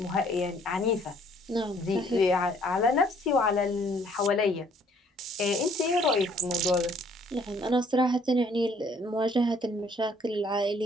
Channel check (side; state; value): both; normal; correlation 0.61